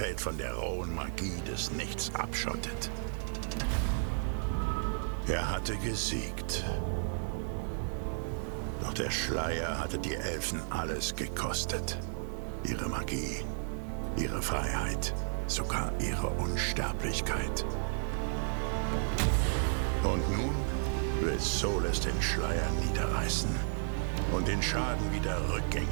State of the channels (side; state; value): left; silent; digital silence